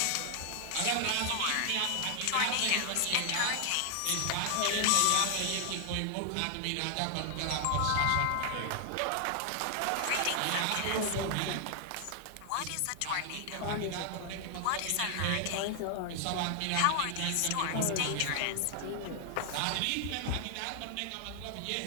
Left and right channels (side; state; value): both; different; correlation 0.00